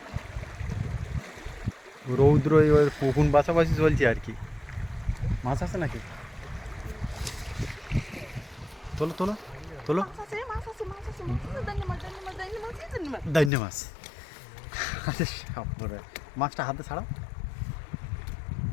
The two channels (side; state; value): right; drops out; at 13.5 s